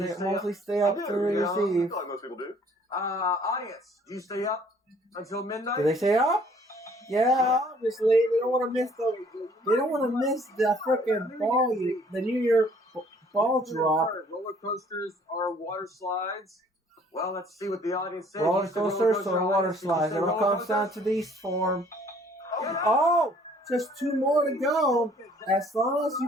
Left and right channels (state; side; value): normal; both; correlation 0.58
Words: they stay mostly up? stay I up do, to you know, I receive. feel like most people do. Audience, do you stay up until midnight? Do they stay up? Yeah, obviously. They don't want to miss the freaking ball, the New Year ball drop. Roller coasters or water slides? Well, let's see what the audience says. Roller You said roller coasters coaster, or water audience. Did you slides. say It all roller comes down coasters? to these form. Get up. Oh, just 2 more to go. As long as you